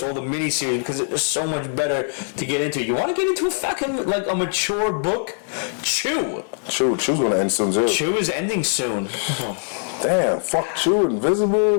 all the miniseries, because it's so much better to get into. You want to get into a fucking, like, a mature book? Chew's gonna end soon too. Chew is ending soon. Damn, fuck Chew,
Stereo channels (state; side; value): silent; right; 64 dB below the other